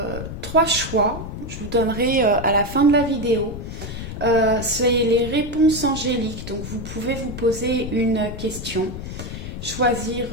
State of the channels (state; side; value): noise; left; rumble, 8 dB below the sound